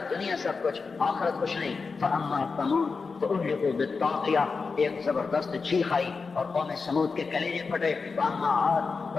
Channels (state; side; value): quieter; right; 4.7 dB